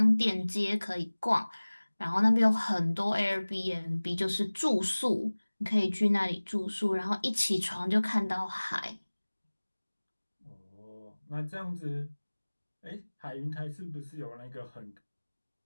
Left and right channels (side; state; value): both; inverted; correlation -1.00